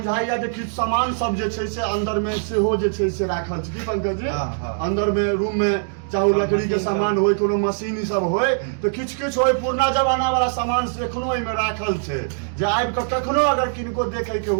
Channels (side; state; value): left; silent; digital silence